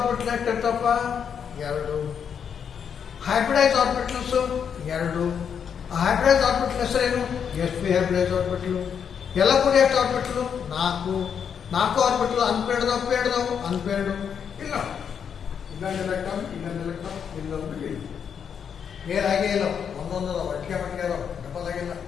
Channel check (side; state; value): right; quieter; 7.5 dB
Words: ಎಷ್ಟಿರ್ತಪ್ಪ? ಎರಡು. ಹೈಬ್ರಿಡೈಸ್ ಆರ್ಬಿಟಲ್ಸ್ ಎರಡು. ಹೈಬ್ರಿಡೈಸ್ ಆರ್ಬಿಟಲ್ ಹೆಸರೇನು? sp hybridise orbital. ಎಲ್ಲ ಕೂಡ ಎಷ್ಟು ಆರ್ಬಿಟಲ್? ನಾಲ್ಕು. ನಾಲ್ಕು ಆರ್ಬಿಟಲ್ ಅನ್ಪೇರ್ಡ್ದವು ಪೇರ್ಡ್ದವು ಅನ್ಪೇರ್ಡು ಇಲ್ಲ. ಇನ್ನೊಂದು ಎಲೆಕ್ಟ್ರಾನ್ ಇನ್ನೊಂದು ಎಲೆಕ್ಟ್ರಾನ್ ಇಲ್ಲೊಂದು ಇಲ್ಲ. ಪೇರ್ ಆಗೇ ಇಲ್ಲ. ಒಂದೊಂದು ಒಟ್ಟಿಗೆ ಮಟ್ಟಿಗೆ ಅದಾವ, ಡಬಲ್ ಆಗಿಲ್ಲ.